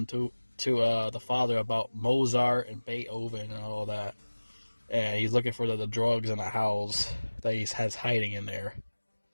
to the father about Mozart and Beethoven and all that. And he's looking for the drugs in the house that he has hiding in there.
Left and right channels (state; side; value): inverted; both; correlation -1.00